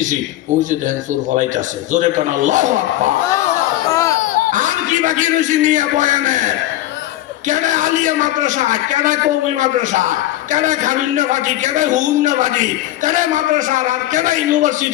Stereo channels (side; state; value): right; quieter; 14.8 dB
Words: ওই যে দেখেন চোর ফলাইতেছে। জোরে কেন আল্লাহু আকবার। আর কি বাকি রয়েছি নিয়ে বয়ানে? কেডা আলিয়া মাদ্রাসা, কেডা কওমি মাদ্রাসা, কেডা খাবিন্নাবাদী, কেডা হুন্নাবাদী, কেডা মাদ্রাসা আর কেডা